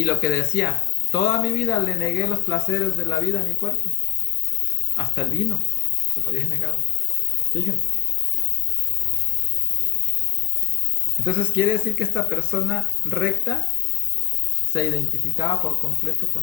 lo que decía, toda mi vida le negué los placeres de la vida a mi cuerpo. Hasta el vino se lo había negado. Fíjense. Entonces quiere decir que esta persona recta se identificaba por completo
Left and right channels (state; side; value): quieter; right; 17.1 dB